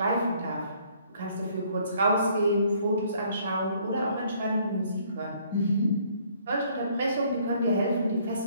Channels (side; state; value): both; inverted; correlation -0.63